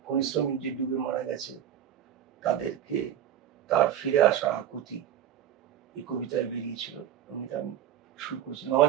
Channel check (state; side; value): quieter; left; 10.5 dB